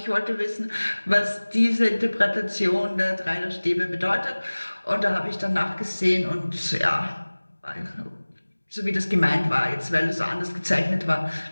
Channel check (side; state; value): both; inverted; correlation -1.00